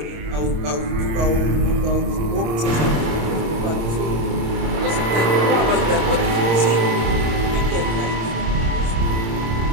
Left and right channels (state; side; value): late; left; 26 ms